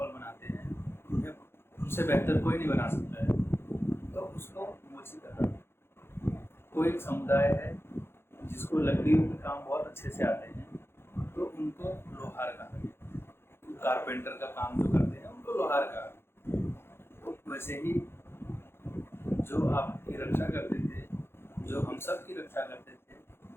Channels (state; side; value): late; right; 0.11 ms